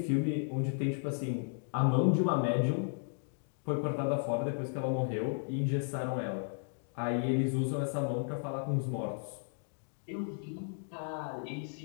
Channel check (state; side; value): silent; right; digital silence